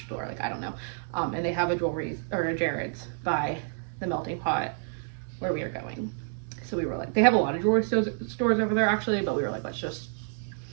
Like I don't know. And they have a jewelry or a Jared's by the melting pot where we are going. So we were like, they have a lot of jewelry stores over there actually, but we were like, let's just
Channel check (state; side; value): silent; left; 59 dB below the other